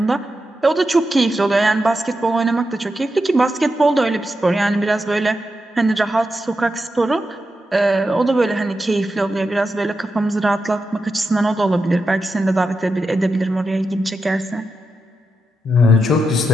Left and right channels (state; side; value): normal; both; correlation 0.87